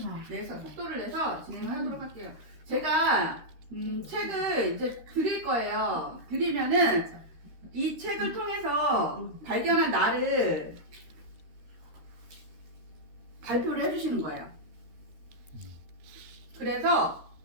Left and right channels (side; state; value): left; late; 13 ms